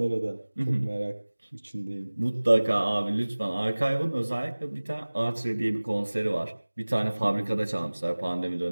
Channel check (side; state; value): both; inverted; correlation -1.00